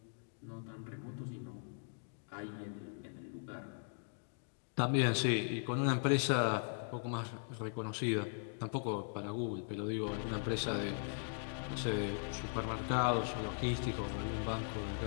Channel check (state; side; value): silent; right; digital silence